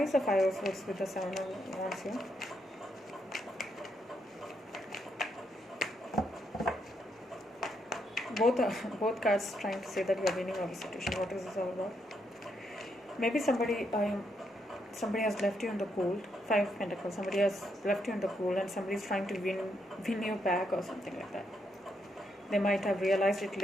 is the Five of Swords with the Seven of Wands here? Both cards trying to say that you are winning over the situation. What is this all about? Maybe somebody has left you in the cold. Five of Pentacles. Somebody has left you in the cold, and somebody is trying to win you back or something like that. They might have realized it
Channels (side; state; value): both; normal; correlation 0.78